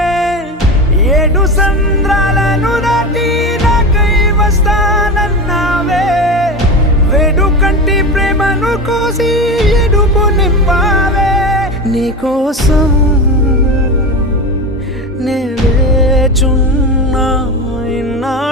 7 సంద్రాలను దాటి నాకై వస్తానన్నావే వేడు కంటి ప్రేమను కోసి ఎడుపు నింపావే నీకోసం నే వేచున్నా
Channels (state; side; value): normal; both; correlation 0.24